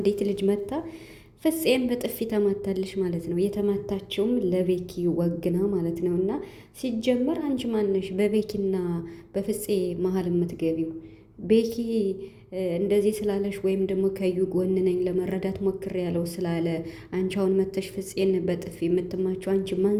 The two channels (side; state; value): both; identical; correlation 1.00